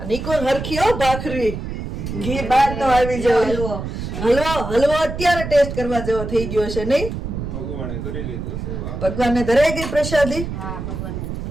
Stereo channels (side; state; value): right; noise; rumble, 6 dB below the sound